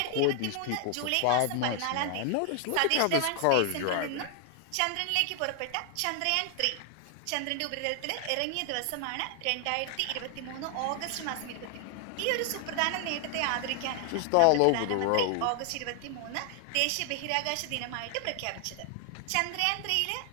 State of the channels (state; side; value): different; both; correlation 0.00